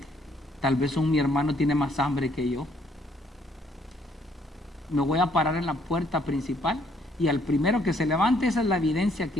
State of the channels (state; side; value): normal; both; correlation 0.67